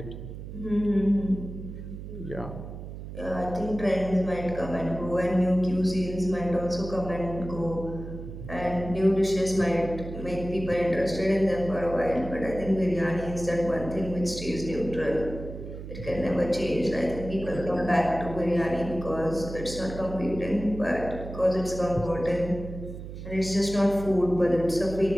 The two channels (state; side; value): noise; right; hum, 10 dB below the sound